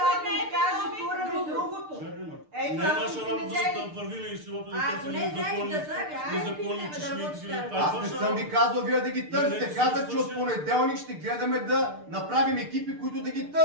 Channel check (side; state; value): left; late; 6.7 ms